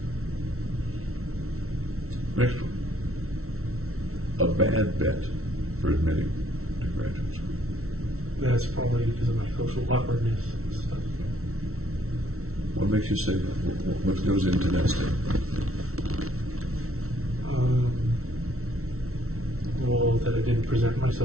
Next one. A bad bet for admitting to graduate school. That's probably because of my social awkwardness and stuff. What makes you say that? What goes into that statement? Well, that I didn't present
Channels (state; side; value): late; left; 0.63 ms